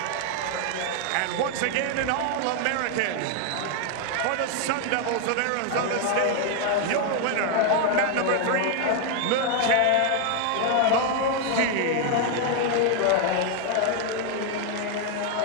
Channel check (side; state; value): both; different; correlation 0.00